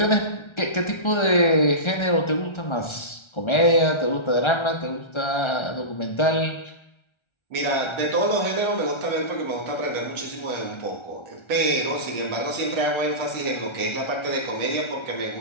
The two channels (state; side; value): late; right; 1.3 ms